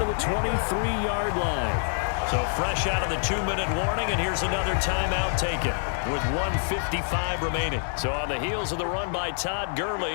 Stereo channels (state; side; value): silent; right; digital silence